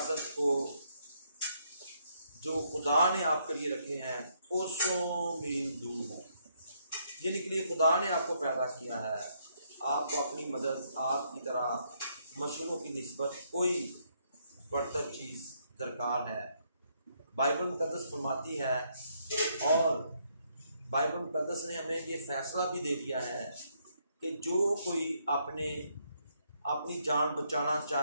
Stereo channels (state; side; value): inverted; both; correlation -0.73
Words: को जो खुदा ने आपके लिए रखे हैं वो 100 मील दूर हों, जिनके लिए खुदा ने आपको पैदा किया है। आपको अपनी मदद, आपकी तरह मशरूं की निस्बत कोई बढ़तर चीज़ दरकार है। बाइबल मुकद्दस फरमाती है और बाइबल मुकद्दस ने हमें ये फैसला भी दे दिया है कि जो कोई अपनी जान बचाना